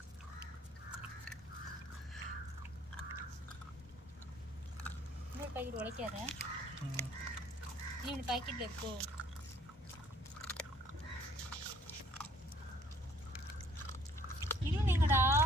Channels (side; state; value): both; normal; correlation 0.59